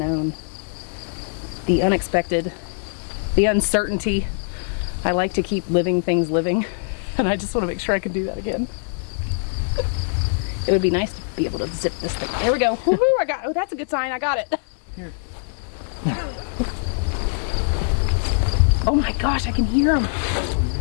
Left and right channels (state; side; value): silent; right; digital silence